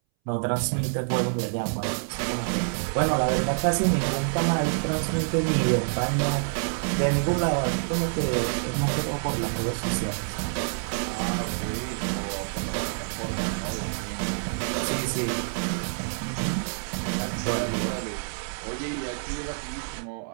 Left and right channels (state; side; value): silent; left; 60 dB below the other